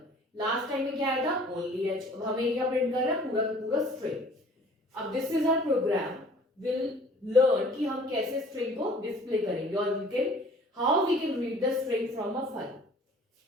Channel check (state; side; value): normal; both; correlation 0.51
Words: लास्ट टाइम में क्या आया था, ओनली एच. अब हमें क्या प्रिंट कर रहा है, पूरा पूरा स्ट्रिंग. अब this is our program will learn कि हम कैसे स्ट्रिंग को डिस्प्ले करेंगे और we can how we can read the string from a file.